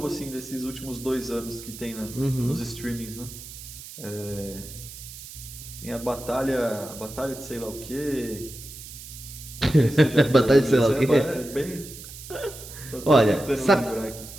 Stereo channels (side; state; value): right; noise; hiss, 14 dB below the sound